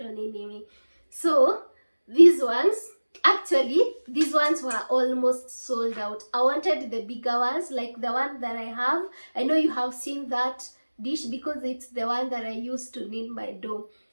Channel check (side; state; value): both; inverted; correlation -1.00